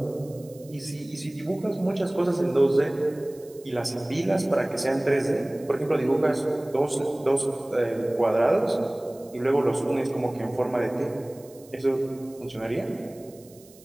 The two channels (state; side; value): noise; right; hiss, 25 dB below the sound